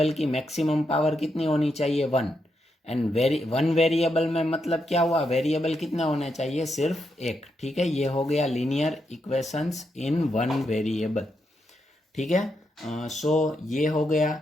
की मैक्सिमम पावर कितनी होनी चाहिए? 1। एंड वन वेरिएबल में मतलब क्या हुआ? वेरिएबल कितने होने चाहिए? सिर्फ एक, ठीक है। ये हो गया linear equations in one variable, ठीक है। सो ये हो गया।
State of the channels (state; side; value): normal; both; correlation 0.82